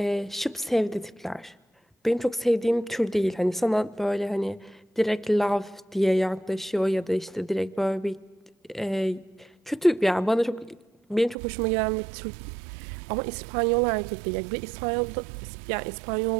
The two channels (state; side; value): drops out; left; at 11.4 s